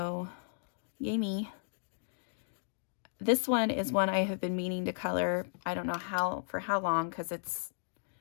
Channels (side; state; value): right; silent; digital silence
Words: yay me. This one is one I have been meaning to color. I don't know for how long, because